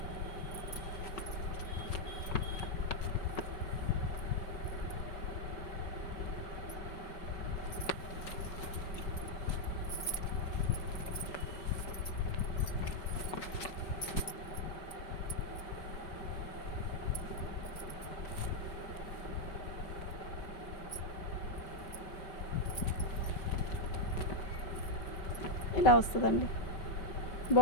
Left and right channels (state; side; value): late; right; 5.0 ms